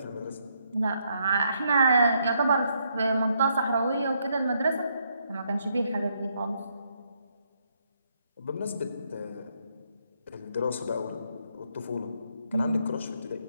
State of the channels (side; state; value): both; inverted; correlation -0.74